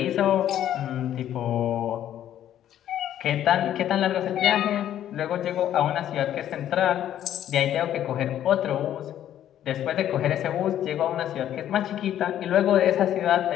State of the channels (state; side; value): quieter; right; 11.2 dB